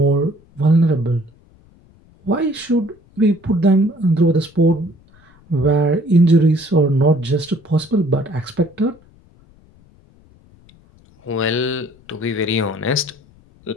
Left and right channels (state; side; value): noise; left; rumble, 29 dB below the sound